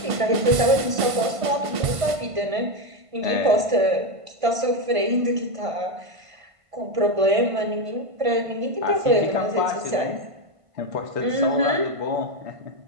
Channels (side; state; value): left; late; 1.5 ms